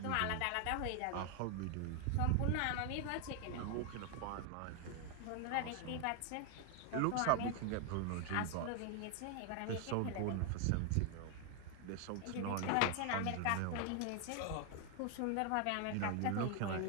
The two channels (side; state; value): both; different; correlation 0.00